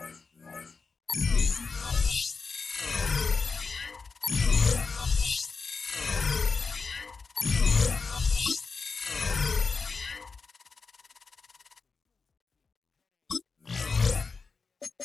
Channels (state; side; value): quieter; right; 4.6 dB